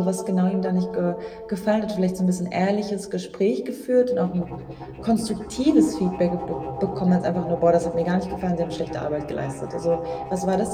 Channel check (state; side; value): identical; both; correlation 1.00